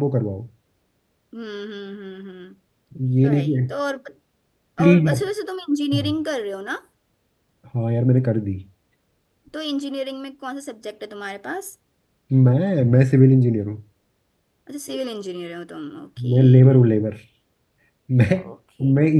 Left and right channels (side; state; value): both; identical; correlation 1.00